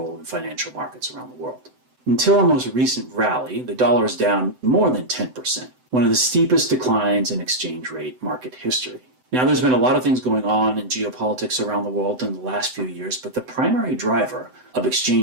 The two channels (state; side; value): late; left; 7.9 ms